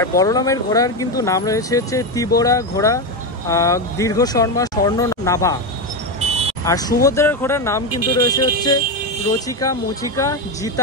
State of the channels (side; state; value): both; normal; correlation 0.12